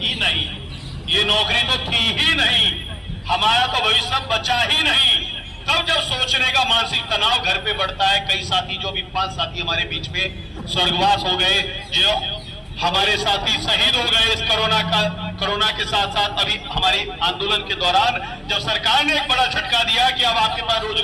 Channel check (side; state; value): both; identical; correlation 1.00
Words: नहीं, ये नौकरी तो थी ही नहीं, हमारा तो भविष्य बचा ही नहीं, तब जब सोचने का मानसिक तनाव घर पे बढ़ता है। कई साथी, जो भी 5 साथी हमारे बीच में स्वर्गवास हो गए, जो हमारे साथी शहीद हो गए इस कोरोना के साथ साथ अभी हमारे आंदोलन के दौरान, जब सरकार ने एक बड़ा झटका दिया कि अब आपके पास